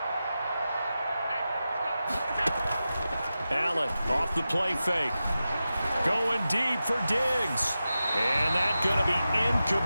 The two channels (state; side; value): inverted; both; correlation -0.93